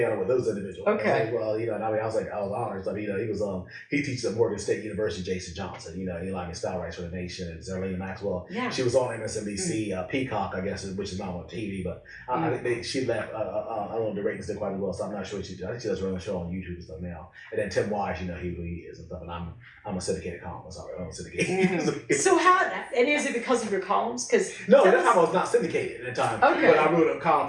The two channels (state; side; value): identical; both; correlation 1.00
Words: with those individuals. Okay. Well, you know, and I mean, I was honored. I mean, you know, he teaches at Morgan State University. Jason Johnson, you know, Eli Style writes for The Nation, and Zerlina Maxwell. Yeah. She was on MSNBC, Peacock, I guess, which is not on TV, but I think she left. I don't know if the ratings did quite as well, so I'm not sure. I think she does run a show on YouTube and stuff now. And then Tim Wise, you know, who he is and stuff. And I'm a syndicated columnist. I'm a syndicated. So and is it because of your columns? Because no, at the time I was not syndicated at the time. Okay. But I wrote a column